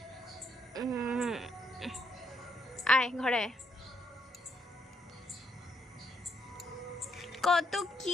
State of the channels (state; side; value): normal; both; correlation 0.74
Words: আয় ঘরে আয়। কত